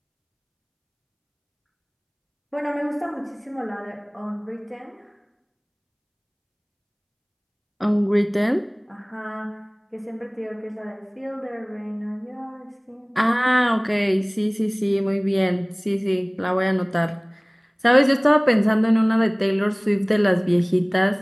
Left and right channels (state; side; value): identical; both; correlation 1.00